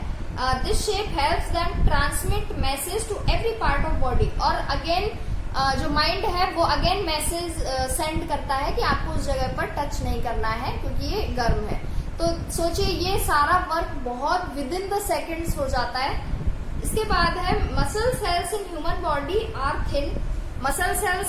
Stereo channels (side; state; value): both; identical; correlation 1.00